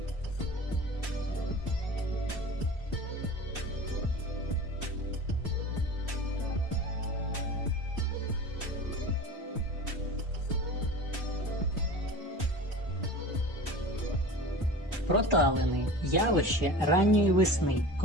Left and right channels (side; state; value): both; normal; correlation 0.35